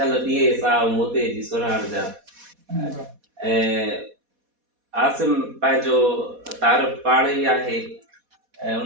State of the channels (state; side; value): late; left; 4.1 ms